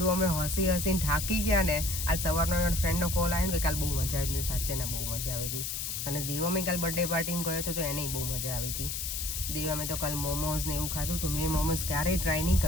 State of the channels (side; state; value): left; noise; hiss, 3 dB below the sound